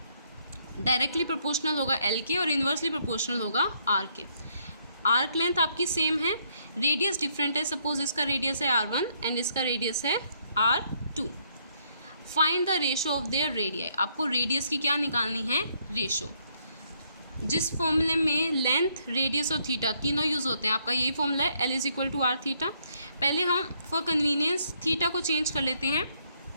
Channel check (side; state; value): both; inverted; correlation -0.70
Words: डायरेक्टली प्रोपोर्शनल होगा एल के और इन्वर्सली प्रोपोर्शनल होगा आर के। आर्क लेंथ आपकी सेम है, रेडियस डिफरेंट है, सपोज इसका रेडियस है R1 एंड इसका रेडियस है R2। Find the ratio of their radii, आपको रेडियस की क्या निकालनी है रेशो। जिस फॉर्मूले में लेंथ रेडियस और थीटा तीनों यूज़ होते हैं, आपका यही फॉर्मूला है L = R थीटा। पहले हम फॉर कन्वीनियंस थीटा को चेंज कर लेते हैं